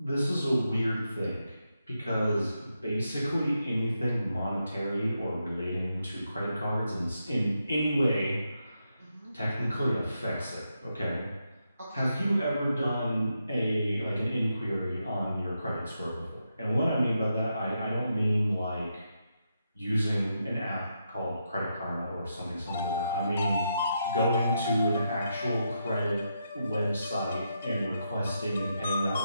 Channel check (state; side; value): inverted; both; correlation -0.83